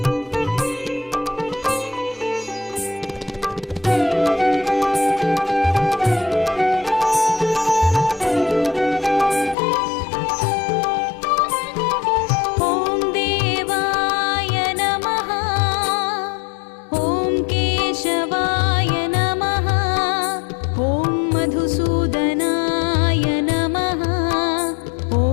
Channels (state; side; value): drops out; right; at 9.6 s